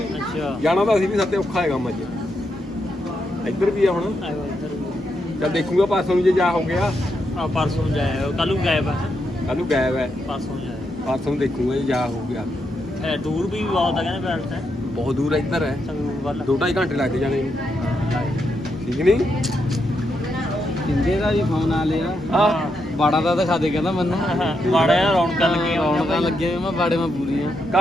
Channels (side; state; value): both; normal; correlation 0.82